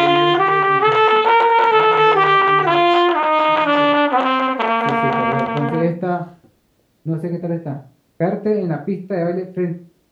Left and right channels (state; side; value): identical; both; correlation 1.00